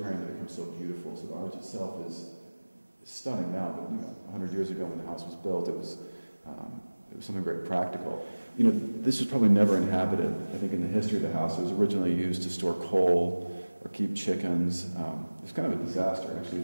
that becomes so beautiful. So the arch itself is stunning now, but 100 years ago when the house was built, it was something very practical. You know, this was probably never inhabited. I think in the history of the house, it was originally used to store coal or keep chickens. It's kind of a disaster, actually.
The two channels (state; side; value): inverted; both; correlation -1.00